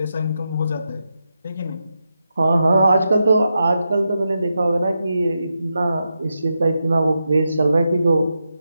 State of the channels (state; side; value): inverted; both; correlation -0.87